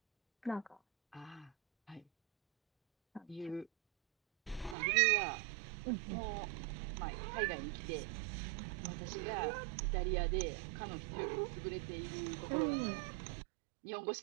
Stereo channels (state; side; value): drops out; left; at 4.8 s